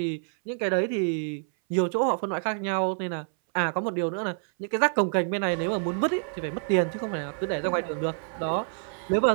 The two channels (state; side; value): silent; left; 59 dB below the other